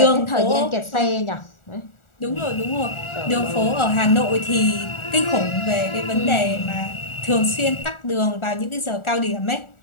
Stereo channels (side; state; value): right; late; 1.4 ms